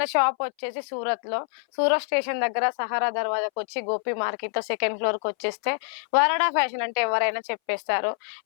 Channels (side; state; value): right; silent; 60 dB below the other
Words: షాప్ వచ్చేసి సూరత్ స్టేషన్ దగ్గర సహారా దర్వాజాకి వచ్చి గోపి మార్కెట్ లో సెకండ్ ఫ్లోర్ కి వచ్చేస్తే వరాడా ఫ్యాషన్ అంటే ఎవరైనా చెప్పేస్తారు.